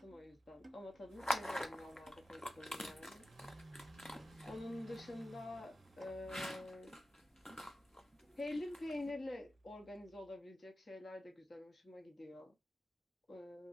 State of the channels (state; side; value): normal; both; correlation 0.93